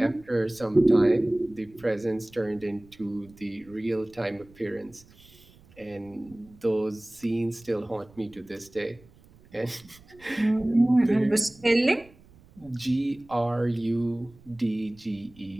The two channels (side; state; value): right; noise; rumble, 26 dB below the sound